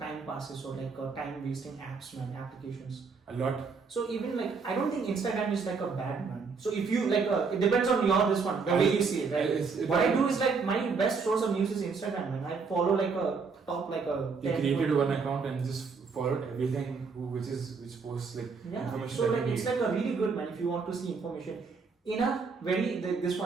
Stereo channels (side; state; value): left; quieter; 5.0 dB